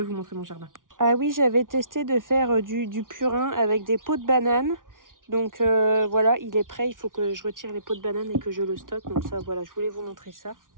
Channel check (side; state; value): left; late; 0.89 ms